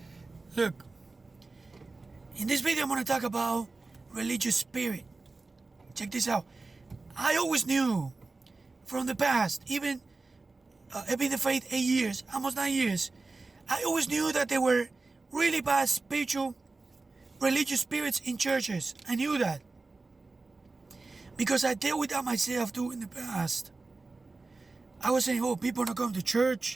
look, in this video I'm going to talk about religious spirit. Check this out. I always knew from the past, even I've been in the faith 8 years, almost 9 years. I always knew that there were really bad spiritual, religious spirits in churches. I knew that because I dealt with that myself too in the past. I was saying, oh, people are not going to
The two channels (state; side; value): quieter; left; 3.6 dB